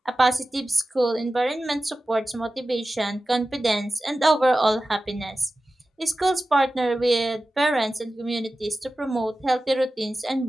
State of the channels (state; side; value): normal; both; correlation 0.95